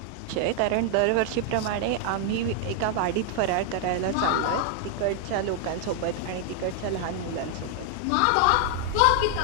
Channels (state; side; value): different; both; correlation 0.00